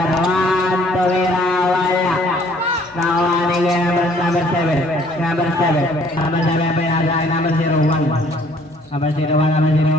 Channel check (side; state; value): both; normal; correlation 0.59